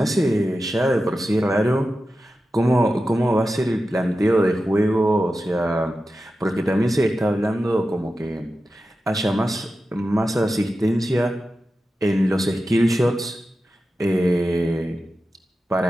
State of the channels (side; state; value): both; normal; correlation 0.92